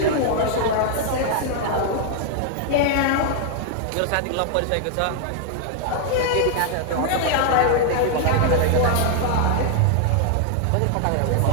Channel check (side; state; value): both; different; correlation 0.00